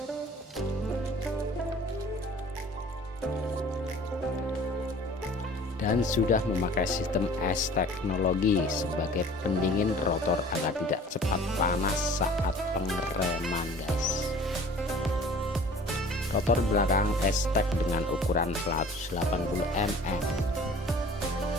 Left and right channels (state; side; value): normal; both; correlation 0.48